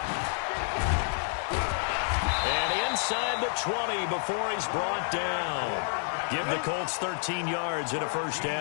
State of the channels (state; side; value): silent; right; 58 dB below the other